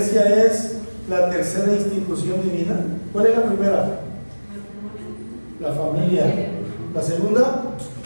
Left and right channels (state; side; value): inverted; both; correlation -1.00